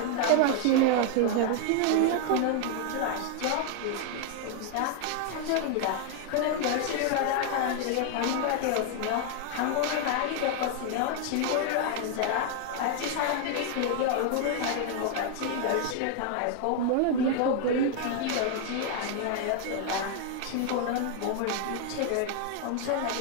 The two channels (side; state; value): both; different; correlation 0.00